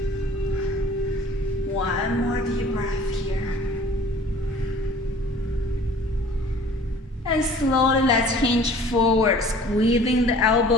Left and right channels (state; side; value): normal; both; correlation 0.49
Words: 1 more deep breath here. And slowly let's hinge forward, squeezing the